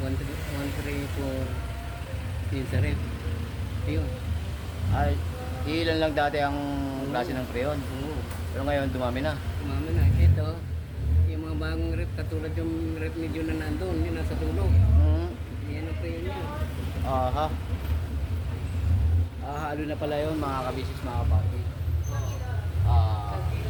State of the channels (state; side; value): identical; both; correlation 1.00